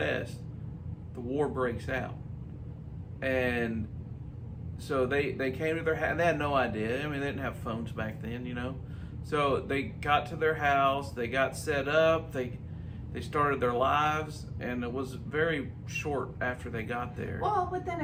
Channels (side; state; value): both; identical; correlation 1.00